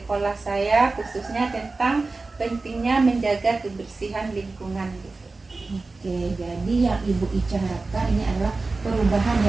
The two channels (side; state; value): left; quieter; 3.6 dB